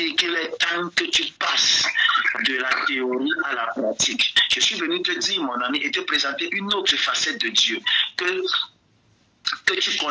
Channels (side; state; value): both; identical; correlation 1.00